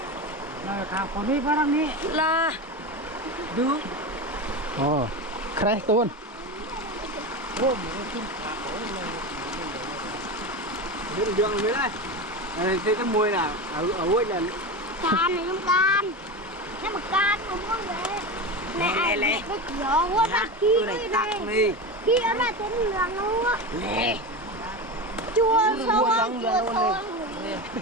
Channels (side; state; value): both; normal; correlation 0.22